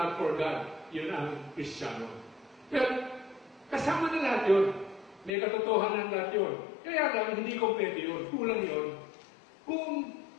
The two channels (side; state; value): right; drops out; at 5.3 s